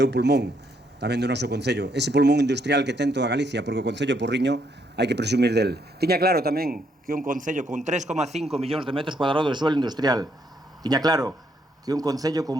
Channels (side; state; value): both; normal; correlation 0.73